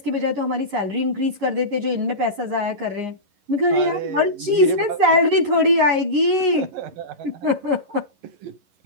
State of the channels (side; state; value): left; late; 11 ms